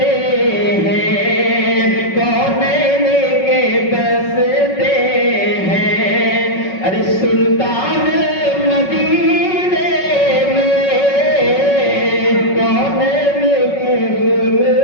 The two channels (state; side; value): late; right; 5.4 ms